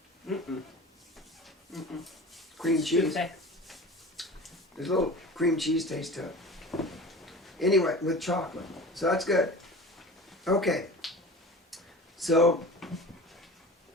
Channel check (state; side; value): normal; both; correlation 0.37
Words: With cream cheese. Tuesday. There's a little cream cheese taste to it. Anyway, with chocolate. So that's good. Okay. So,